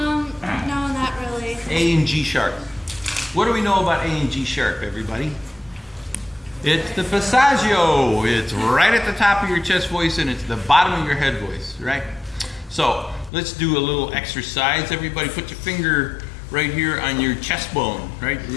No, not really. A and G sharp. What do we know about A and G sharp, everybody? It's the passaggio. It's right at the top of your chest voice and it's the bottom of your head voice, right? So let's do a little exercise. Everybody put your finger right here on your chest bone, right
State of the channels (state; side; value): drops out; right; at 13.3 s